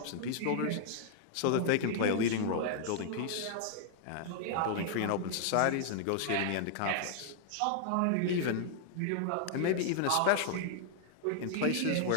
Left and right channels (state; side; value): different; both; correlation -0.01